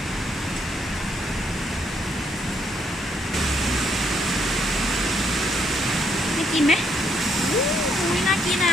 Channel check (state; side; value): normal; both; correlation 0.73